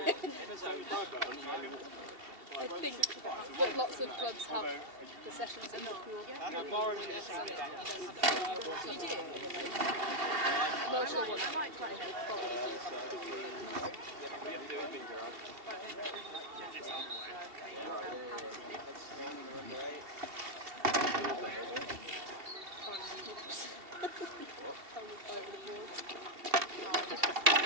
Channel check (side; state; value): left; late; 2.7 ms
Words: I think that lots of clubs have the sessions in the pool. You do? I'm not sure what that probably do have to do with it.